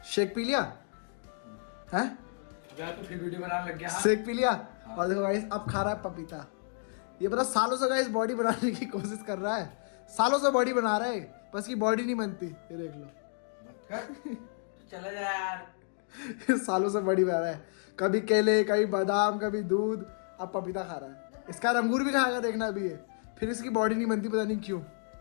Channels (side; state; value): right; silent; 57 dB below the other